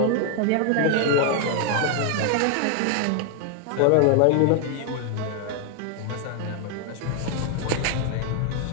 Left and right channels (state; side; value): different; both; correlation 0.00